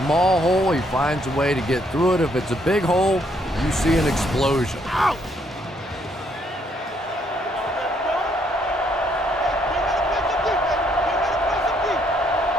hole, he finds a way to get through it. If it's a big hole, you see an explosion. Out!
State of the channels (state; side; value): normal; both; correlation 0.70